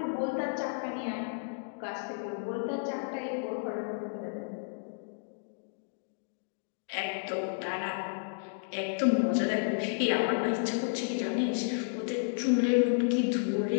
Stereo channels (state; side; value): silent; right; digital silence